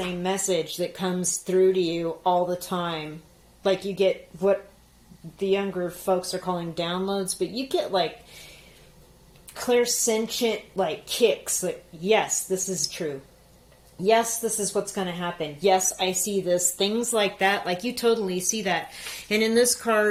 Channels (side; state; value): both; identical; correlation 1.00